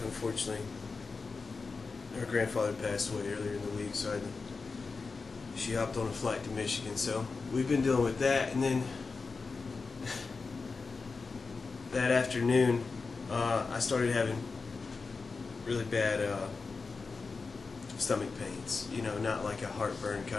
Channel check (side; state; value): right; quieter; 4.4 dB